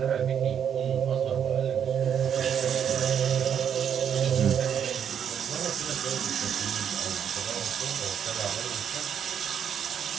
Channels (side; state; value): left; quieter; 8.4 dB